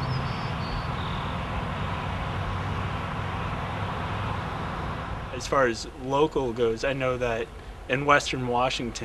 As far as local goes, I know that in Western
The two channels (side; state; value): both; identical; correlation 1.00